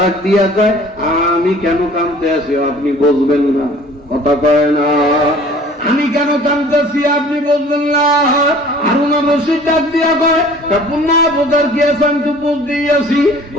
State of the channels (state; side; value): normal; both; correlation 0.49